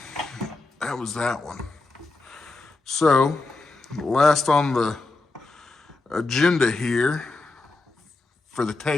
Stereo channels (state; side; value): quieter; right; 3.4 dB